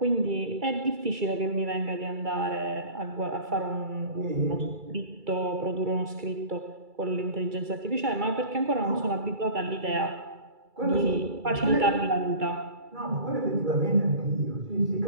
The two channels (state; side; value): late; left; 2.3 ms